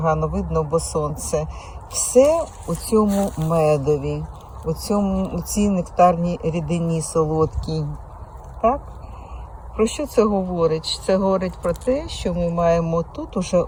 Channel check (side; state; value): both; identical; correlation 1.00